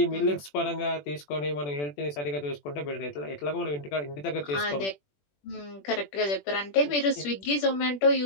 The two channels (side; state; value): right; late; 21 ms